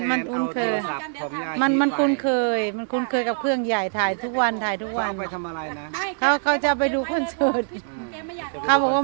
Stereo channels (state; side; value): silent; left; 63 dB below the other